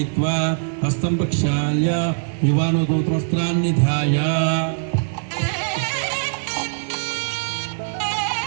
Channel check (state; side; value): silent; left; 64 dB below the other